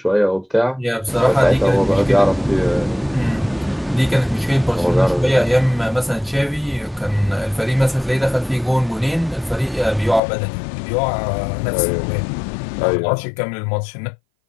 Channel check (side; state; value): right; drops out; at 10.2 s